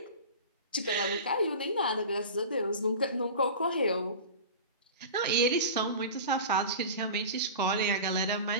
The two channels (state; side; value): inverted; both; correlation -0.33